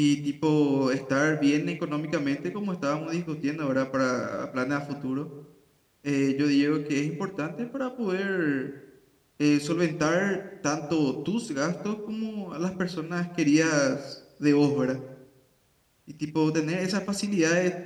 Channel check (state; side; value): identical; both; correlation 1.00